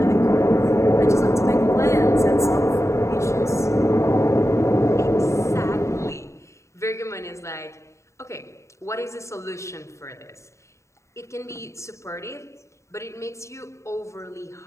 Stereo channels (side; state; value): right; late; 0.14 ms